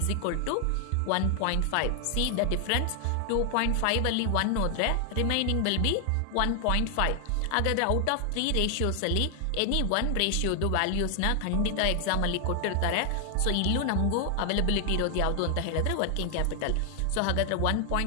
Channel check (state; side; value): different; both; correlation 0.00